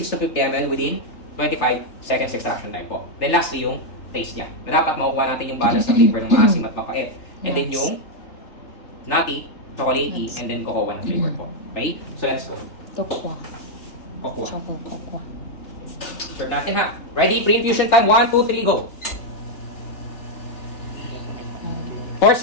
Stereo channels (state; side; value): late; right; 3.4 ms